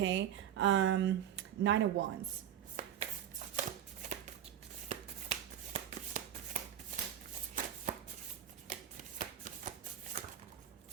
Nine of Wands.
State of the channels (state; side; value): quieter; left; 10.3 dB